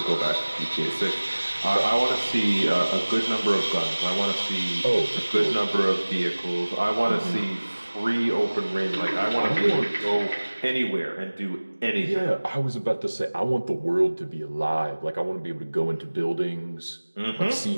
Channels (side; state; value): both; inverted; correlation -1.00